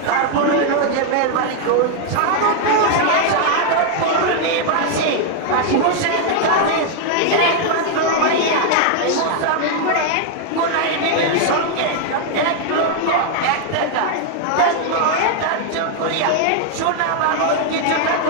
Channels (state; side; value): different; both; correlation 0.00